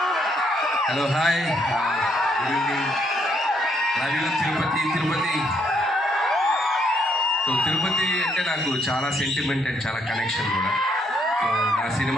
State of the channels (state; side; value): normal; both; correlation 0.72